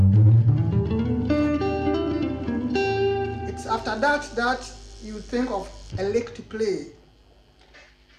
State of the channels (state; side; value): identical; both; correlation 1.00